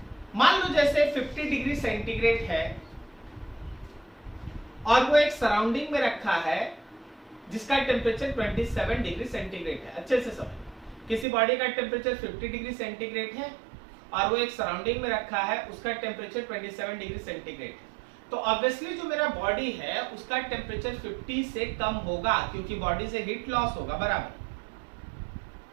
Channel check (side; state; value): left; drops out; at 11.2 s